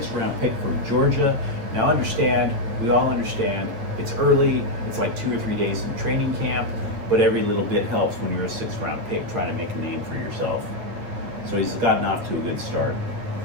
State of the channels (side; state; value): left; late; 9.2 ms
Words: pick from Georgia. Now understand, we all understand, it's early, it's like 2 or 3 days in training camp, but every little bit helps when you're a 6th-round pick trying to make a name for yourself. So he's gotten off to a good start.